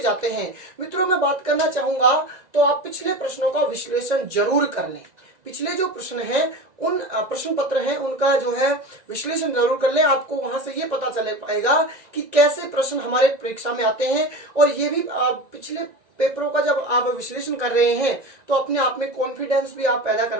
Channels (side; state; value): left; late; 1.9 ms